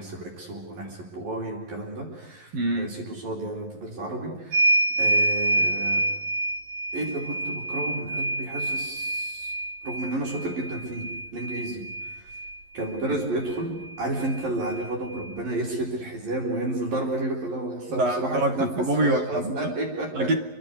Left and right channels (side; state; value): left; late; 11 ms